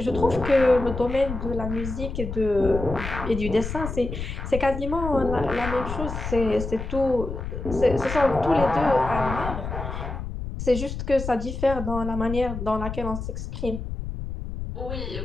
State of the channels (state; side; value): noise; left; rumble, 6 dB below the sound